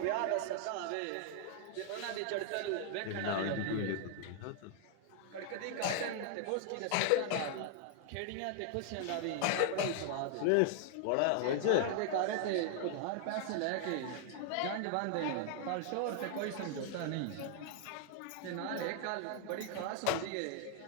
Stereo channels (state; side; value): different; both; correlation 0.00